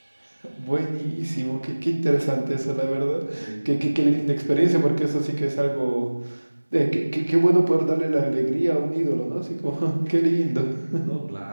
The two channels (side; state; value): both; inverted; correlation -1.00